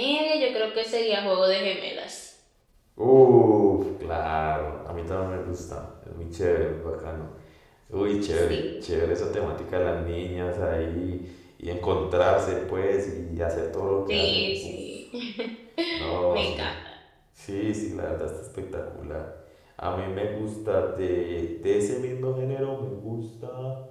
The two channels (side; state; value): both; identical; correlation 1.00